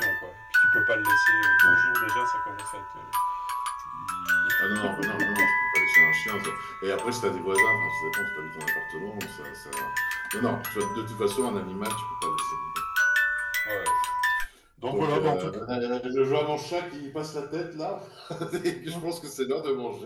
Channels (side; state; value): both; identical; correlation 1.00